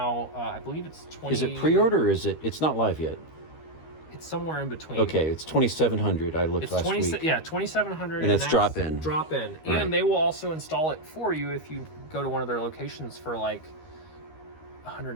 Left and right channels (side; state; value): right; late; 13 ms